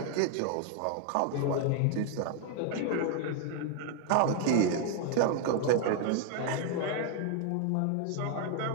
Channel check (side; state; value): both; different; correlation 0.00